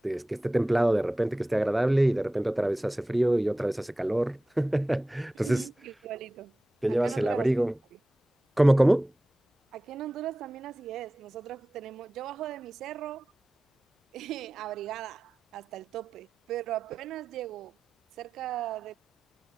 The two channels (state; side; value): normal; both; correlation 0.97